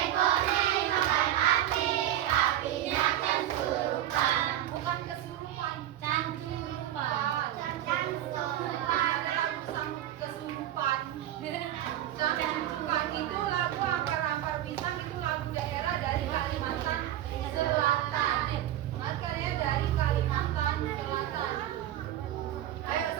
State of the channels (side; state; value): left; quieter; 12.6 dB